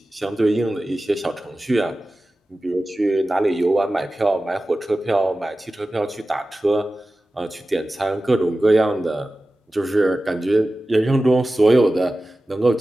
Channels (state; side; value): normal; both; correlation 0.95